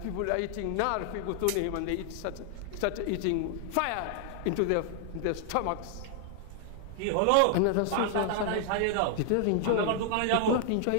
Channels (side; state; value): both; different; correlation 0.00